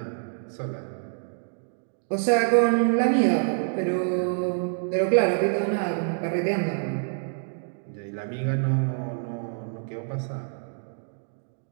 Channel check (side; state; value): left; silent; digital silence